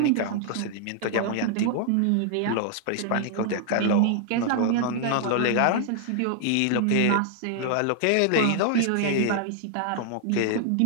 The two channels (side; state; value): both; different; correlation 0.00